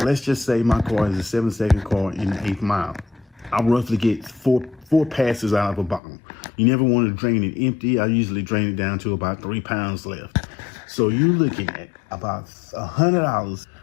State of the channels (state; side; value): drops out; right; at 6.0 s